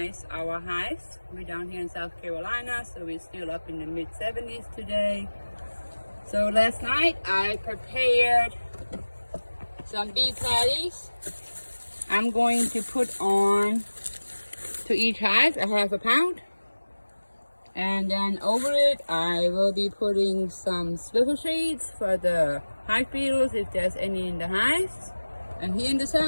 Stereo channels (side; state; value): both; inverted; correlation -1.00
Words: our hives. We're down here in South Carolina, so we're still up in the mid-70s today. So last night I prepared some bee patties. I'm going to put on to each hive a half a pound. And then over it, I will be putting some swivel shades for the hive beetles if there's any in the hives. And here in the